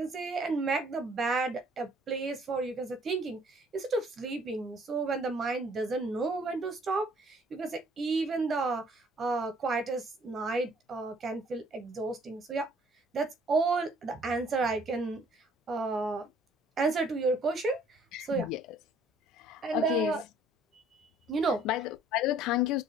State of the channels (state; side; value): normal; both; correlation 0.59